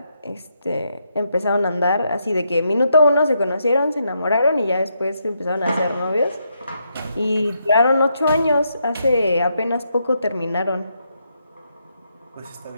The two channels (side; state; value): both; inverted; correlation -0.80